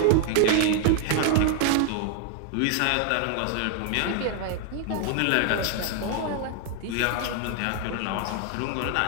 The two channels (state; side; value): different; both; correlation 0.00